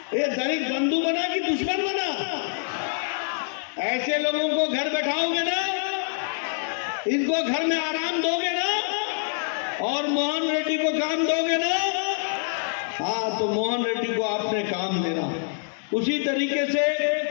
ये दलित बंधु बना कि दुश्मन बना? ऐसे लोगों को घर बैठाओगे ना, इनको घर में आराम दोगे ना, और मोहन रेड्डी को काम दोगे ना? हाँ, तो मोहन रेड्डी को आपने काम देना। उसी तरीके से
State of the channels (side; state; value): right; silent; 61 dB below the other